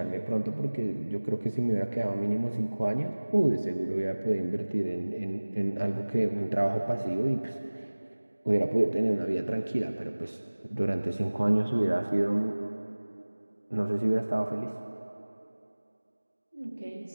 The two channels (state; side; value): inverted; both; correlation -1.00